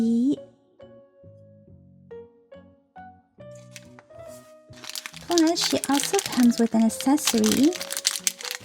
Plus, she also comes with an accessory.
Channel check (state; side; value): identical; both; correlation 1.00